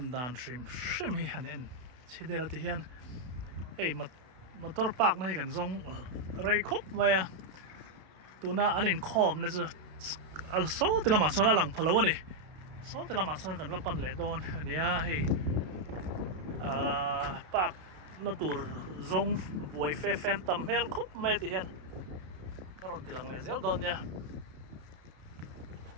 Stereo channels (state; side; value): late; left; 32 ms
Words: đàn stream hi hẳn en chỉ để là thì hiện hey motor park này cần dùng ray khop vậy tu na anh in khom này chứ số thì là mà số là lằng phalo này số thì là mà số cần vào pan lệ đòn anh ấy hey park nó tụt dùng buổi phê phen tầm hel khop mấy thì hiện cái rồi thì lằng lệ dễ đòn nha